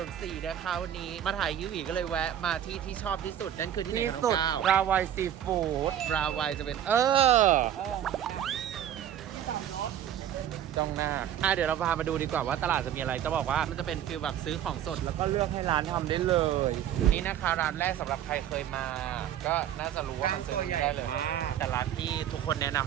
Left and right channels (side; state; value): left; quieter; 10.5 dB